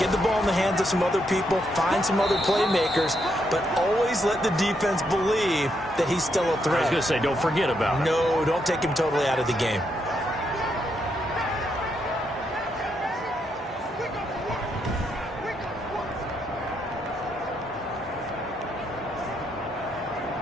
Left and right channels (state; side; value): normal; both; correlation 0.78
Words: the ball in the hands of some other people, find some other playmakers, but always let the defense believe that he's still a threat. I was going to say, don't forget about it. No, don't take him totally out of the game.